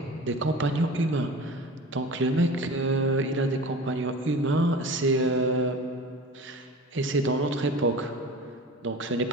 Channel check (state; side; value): normal; both; correlation 0.37